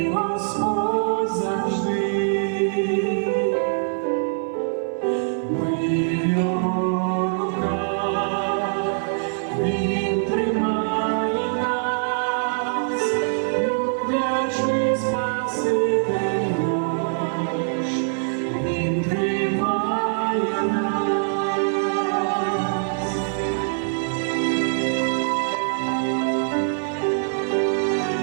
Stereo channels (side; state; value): left; silent; 58 dB below the other